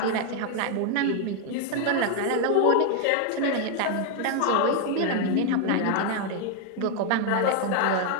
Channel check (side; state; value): both; different; correlation 0.00